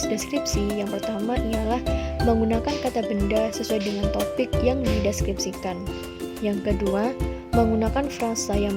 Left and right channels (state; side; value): identical; both; correlation 1.00